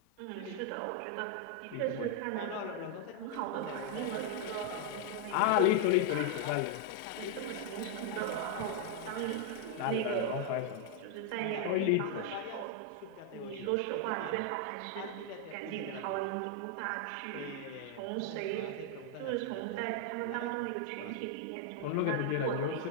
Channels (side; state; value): both; different; correlation 0.00